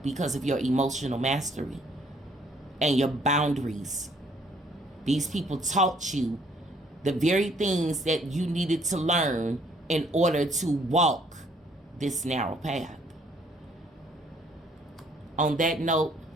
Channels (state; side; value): normal; both; correlation 0.64